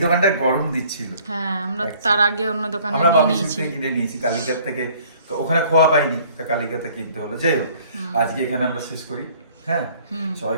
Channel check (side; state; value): both; inverted; correlation -0.56